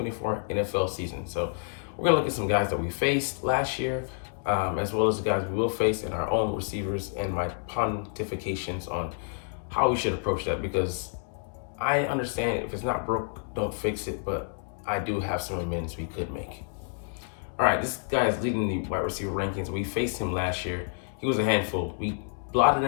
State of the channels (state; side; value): silent; right; digital silence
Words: NFL season. So we're going to look at some guys that we faced last year, as well as the guys we will face in our own receivers and my pontifications on how we should approach that, because I understand if it's not broke, don't fix it, but I do have some amends we could make. All right, this guy is leading the wide receiver rankings. We faced him last year. He was a handful. We blotted